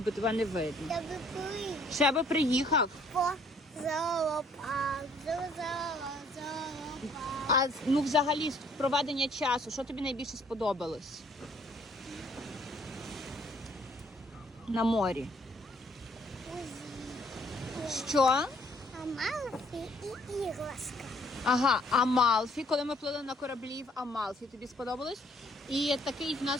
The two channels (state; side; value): normal; both; correlation 0.62